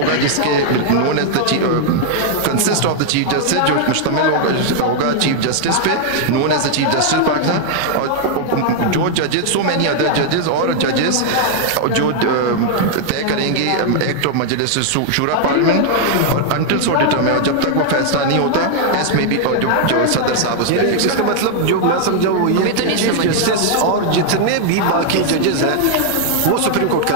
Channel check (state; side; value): different; both; correlation 0.00